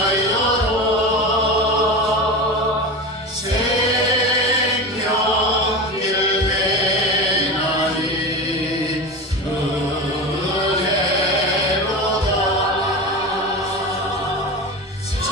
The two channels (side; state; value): both; normal; correlation 0.26